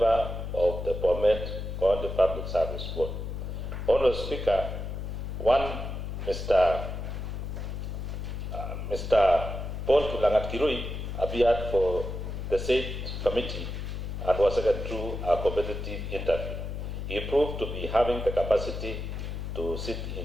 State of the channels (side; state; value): left; noise; hum, 5 dB below the sound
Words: of the BOMET County Public Service Board. Honorable Speaker, Mr. Paul Kiplangat-Kirui appeared for the said committee and was taken through a competitive interview. He proved to be having the capacity to sit